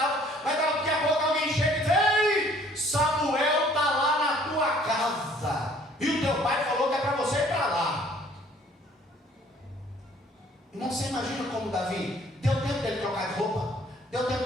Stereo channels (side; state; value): both; normal; correlation 0.57